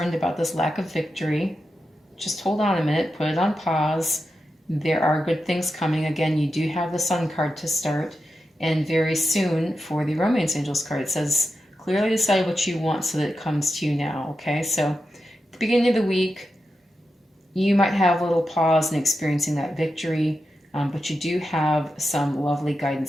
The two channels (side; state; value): both; normal; correlation 0.89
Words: about this lack of victory, just hold on a minute, put it on pause. There are good things coming. Again, you do have the Sun card to start. And very soon for the Romance Angels card, it says, clearly decide what you want so that it comes to you now, okay? So at the beginning of the week, you might have a little pause in experiencing that victory, but you do have some lovely